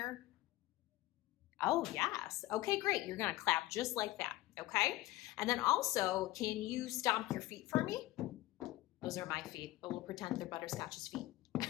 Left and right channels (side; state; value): right; quieter; 17.2 dB